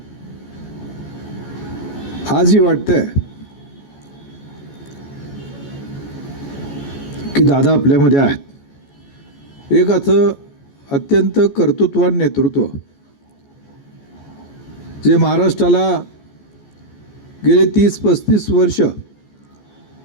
आजही वाटतंय की दादा आपल्यामध्ये आहेत। एक अत्यंत कर्तृत्वान नेतृत्व जे महाराष्ट्राला गेले 30-35 वर्ष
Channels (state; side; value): late; right; 14 ms